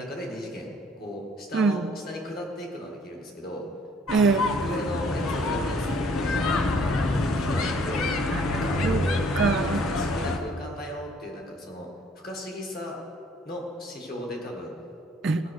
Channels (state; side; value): normal; both; correlation 0.60